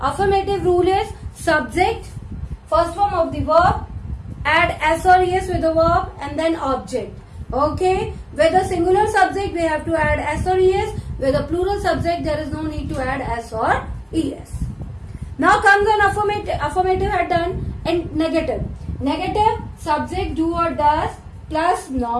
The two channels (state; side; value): identical; both; correlation 1.00